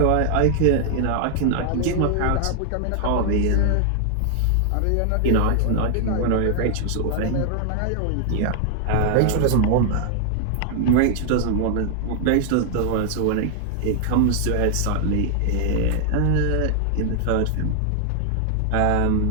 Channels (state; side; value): different; both; correlation 0.00